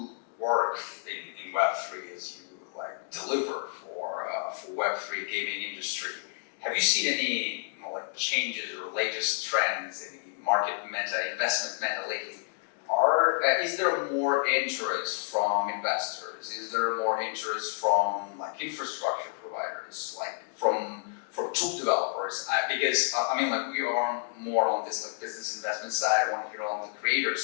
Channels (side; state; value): right; silent; digital silence